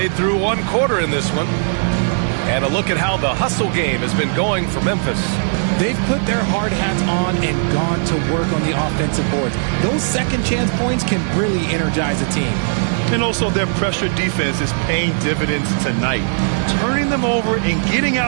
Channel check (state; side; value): silent; left; digital silence